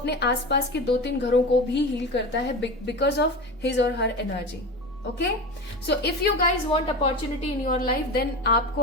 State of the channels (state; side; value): normal; both; correlation 0.26